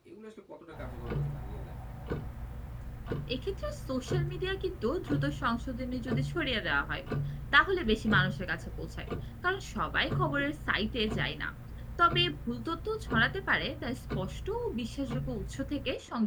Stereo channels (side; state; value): both; identical; correlation 1.00